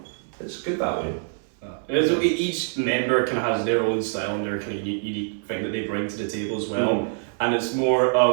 it's good that way. Each member kind of has their own style and their kind of unique thing that they bring to the table as well, and it's more,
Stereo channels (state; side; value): silent; left; 59 dB below the other